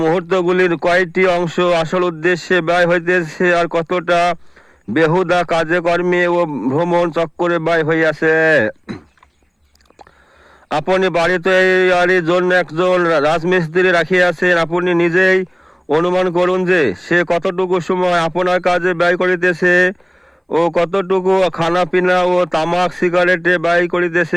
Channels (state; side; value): identical; both; correlation 1.00